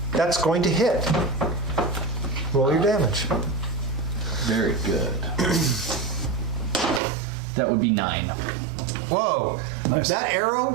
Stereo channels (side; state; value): left; drops out; at 7.0 s